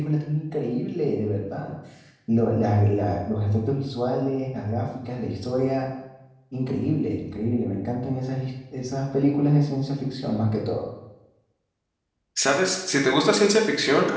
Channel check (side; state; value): both; identical; correlation 1.00